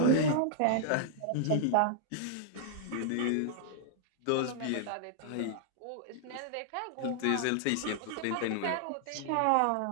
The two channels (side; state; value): both; different; correlation -0.01